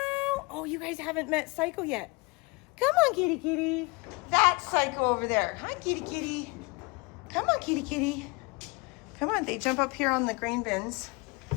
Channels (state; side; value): quieter; right; 27.7 dB